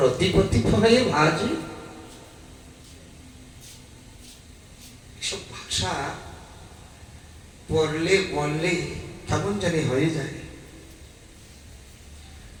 ভয়ে ভাজি। ভাষা পড়লে বললে কেমন জানি হয়ে যায়।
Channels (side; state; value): both; identical; correlation 1.00